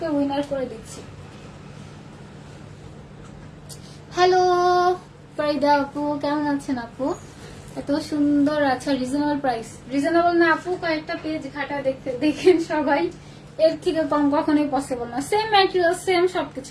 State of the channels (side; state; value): both; identical; correlation 1.00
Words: উইনার করে দিচ্ছি। হ্যালো ফারিদা আপু, কেমন আছেন আপু? এত সুন্দর। আচ্ছা রিজনেবল প্রাইস, রিজনেবল না আপু, কয়েকটা পেজ ঘাটা দেখতে দেখেন সবাই, এর থেকে কম কখনোই পসিবল না। সেম ম্যাটেরিয়াল, সেম সবকিছু,